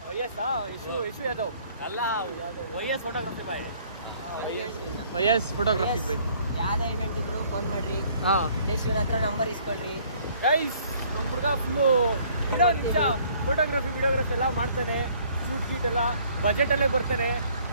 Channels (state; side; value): inverted; both; correlation -0.60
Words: ಯಶು ಯಾದವ್ ಅಲ್ಲ YS photography by. YS photography by. ಯಾವ್ದೇ ಇವೆಂಟ್ ಇದ್ರು ಫೋನ್ ಮಾಡ್ರಿ, ದೇಶಿನ ಹತ್ರ ನಂಬರ್ ಇಸ್ಕೊಳ್ರಿ ಗೈಸ್. ನಮ್ಮ ಹುಡುಗ ಫುಲ್ಲು ನಿಜ ಫೋಟೋಗ್ರಫಿ ವಿಡಿಯೋಗ್ರಫಿ ಎಲ್ಲ ಮಾಡ್ತಾನೆ. ಶೂಟ್ ಗೀಟ್ ಎಲ್ಲ ಬಜೆಟಲ್ಲೇ ಬರ್ತಾನೆ.